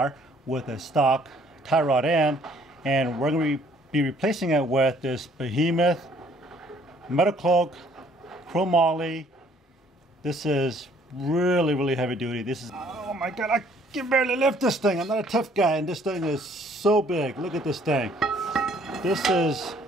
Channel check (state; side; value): normal; both; correlation 0.61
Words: with a stock tie rod end, and we're going to be replacing it with this behemoth Metalcloak chromoly. This is really heavy duty. This is, oh my god, I can barely lift this thing. I'm not a tough guy, and this thing is so big. Look at this thing. This is